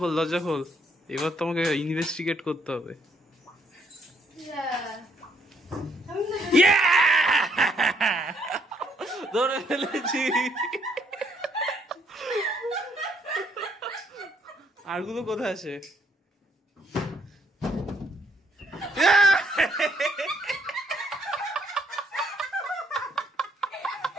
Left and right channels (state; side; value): normal; both; correlation 0.69